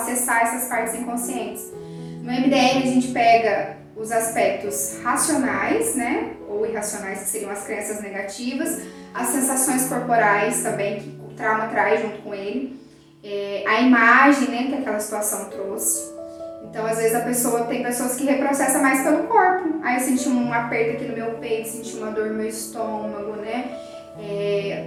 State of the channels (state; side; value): identical; both; correlation 1.00